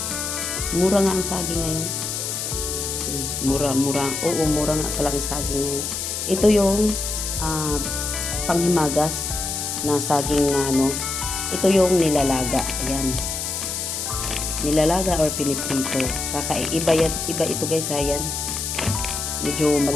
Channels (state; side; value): noise; left; hiss, 3 dB below the sound